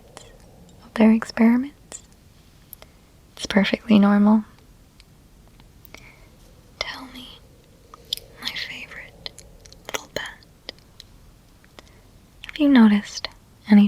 of their experiments. It's perfectly normal. Tell me, my favorite little pet, have you noticed any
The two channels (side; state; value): both; identical; correlation 1.00